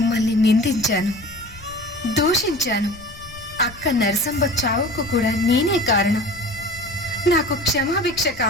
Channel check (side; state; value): left; noise; rumble, 19 dB below the sound